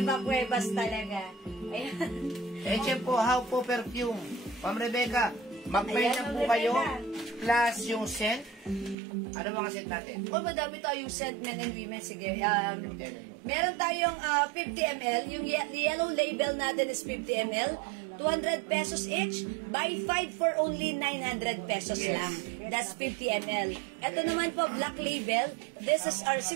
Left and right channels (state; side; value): drops out; left; at 9.0 s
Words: Cuevas talaga. Ayan. Eche po, how po perfume. Ma'am Rebecca, mag-pay na po kayo, plus yung scent. Ano mga scent natin? Oh, madami tayong scent, men and women. Sige. Meron tayong 50 ml. Yung yellow label natin is 50 ml. 200 pesos each. Buy 5 for only 900 pesos lang. That's 50 ml. Ito naman po, black label. This is our